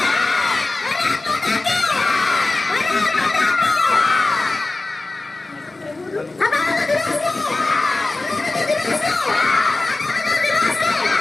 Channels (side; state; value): right; quieter; 3.1 dB